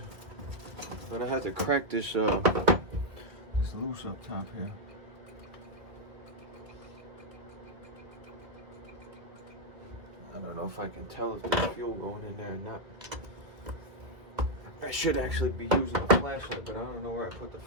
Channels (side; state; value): left; late; 2.2 ms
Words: But I had to crack this this loose up top here. I don't know if I can tell if there's fuel going in there or not. I should actually be using a flashlight, but I don't know where I put the